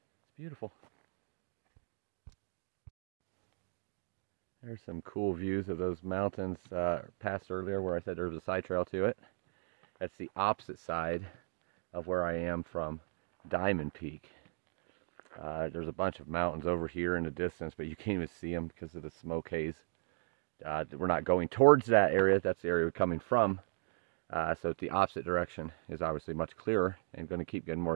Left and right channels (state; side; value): silent; left; digital silence